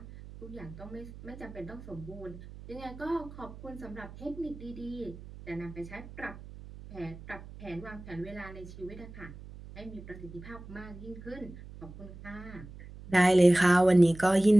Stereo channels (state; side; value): noise; right; hum, 15 dB below the sound